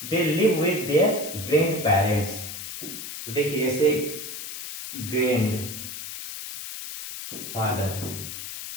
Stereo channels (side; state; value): left; noise; hiss, 8 dB below the sound